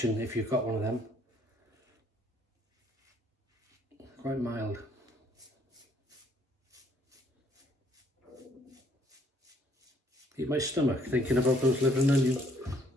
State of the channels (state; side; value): normal; both; correlation 0.64